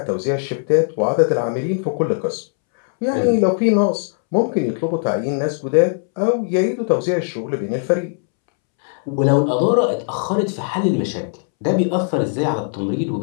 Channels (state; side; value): silent; right; 66 dB below the other